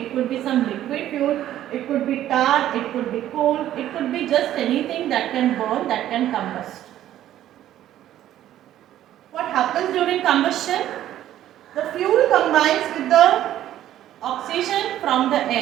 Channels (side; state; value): left; quieter; 12.4 dB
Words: could be some liquid fuel, it could be tar, it could be coal, it could be just anything that can burn, that can combust. What happens during combustion? The fuel combines with the oxygen from the